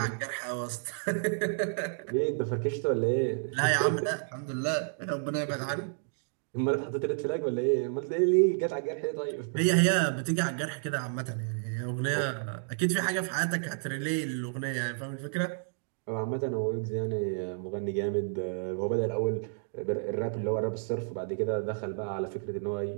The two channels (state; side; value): silent; left; digital silence